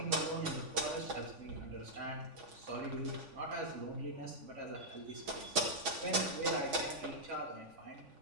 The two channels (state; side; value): late; left; 3.5 ms